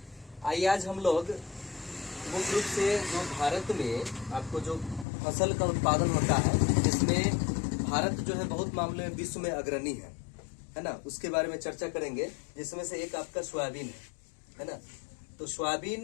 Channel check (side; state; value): right; drops out; at 5.1 s